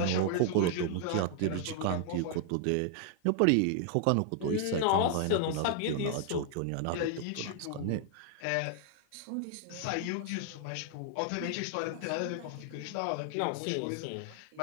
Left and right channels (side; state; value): both; different; correlation 0.00